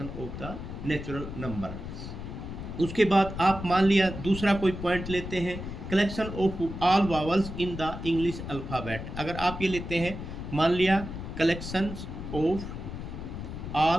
of the natural number. उसके बाद आप मान लिया दूसरा कोई पॉइंट लेते हैं, collection of all vowels in the English alphabet. अगर आप ये लेते हैं मान लिया collection of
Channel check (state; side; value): noise; left; rumble, 8 dB below the sound